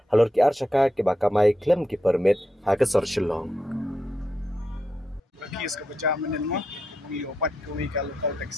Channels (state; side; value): normal; both; correlation 0.84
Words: halor ki archaka ke bakamai claim ki permit hakasor shillong. Kes kebajaman mo mengi obat kami ke lokal